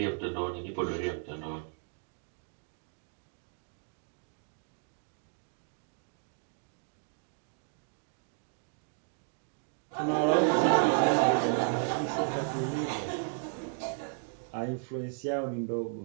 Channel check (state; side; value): silent; left; 55 dB below the other